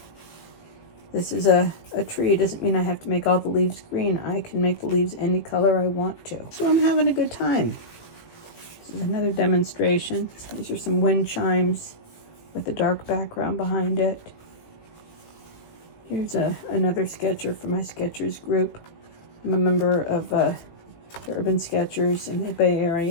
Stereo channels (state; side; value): late; right; 18 ms